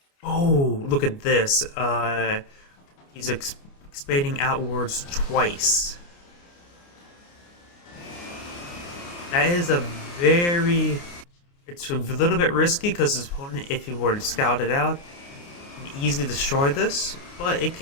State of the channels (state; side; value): late; right; 29 ms